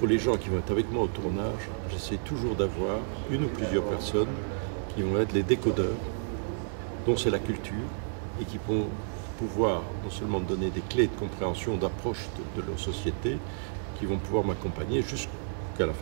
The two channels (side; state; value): left; silent; digital silence